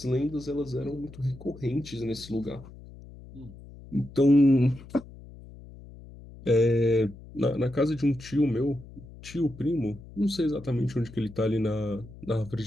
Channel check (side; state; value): left; noise; hum, 18 dB below the sound